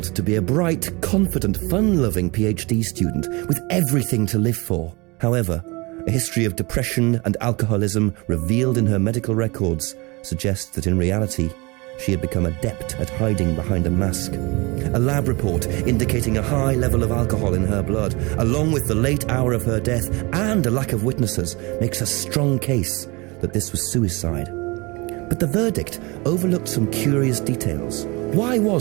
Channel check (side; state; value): left; quieter; 26.0 dB